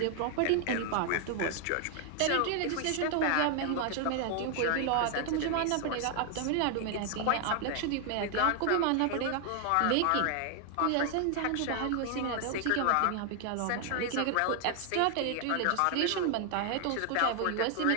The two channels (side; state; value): both; different; correlation 0.00